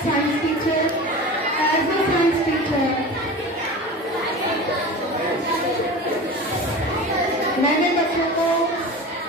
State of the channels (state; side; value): normal; both; correlation 0.33